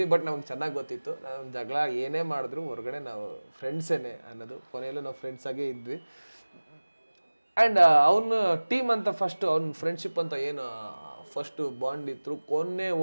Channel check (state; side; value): inverted; both; correlation -1.00